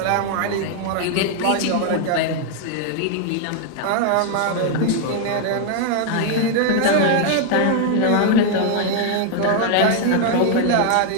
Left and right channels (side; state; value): both; different; correlation 0.00